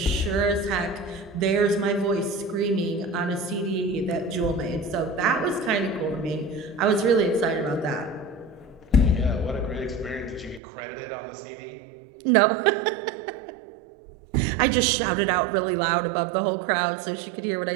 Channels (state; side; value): drops out; left; at 10.6 s